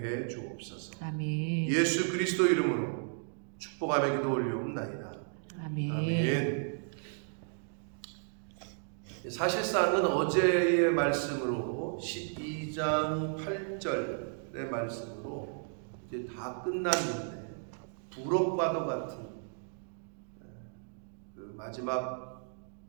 해 주옵소서. 아멘. 예수 그리스도 이름으로 축복하며 기도 올리옵나이다. 아멘. 아멘. 사실상은 어제의 말씀으로 12장 8절의 말씀으로 이제 다 끝났는데 부록과도 같은 그 마지막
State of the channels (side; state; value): left; silent; 55 dB below the other